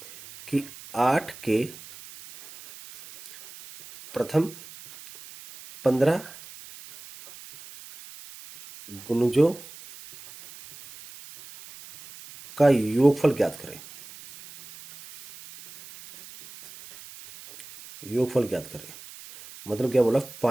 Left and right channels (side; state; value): right; noise; hiss, 18 dB below the sound